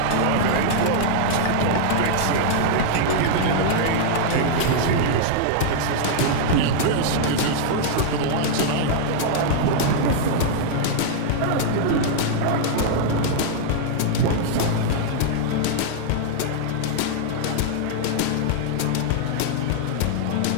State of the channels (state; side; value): different; both; correlation -0.01